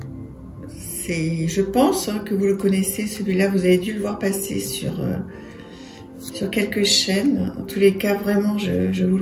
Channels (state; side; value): identical; both; correlation 1.00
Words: Je pense hein, que vous le connaissez, celui-là, vous avez dû le voir passer sur quelques chaînes. En tous les cas, vraiment, je vous le